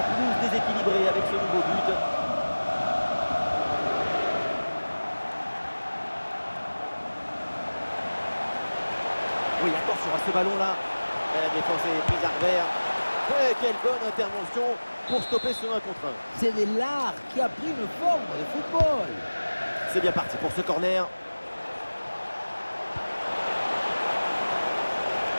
plus déséquilibré avec ce nouveau but. Oui, attention à ce ballon-là. La défense est prise à revers. Et quelle bonne intervention pour stopper ce 1 contre 1. C'est de l'art qui a pris une forme de football. C'est bien parti pour ce corner.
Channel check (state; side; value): inverted; both; correlation -1.00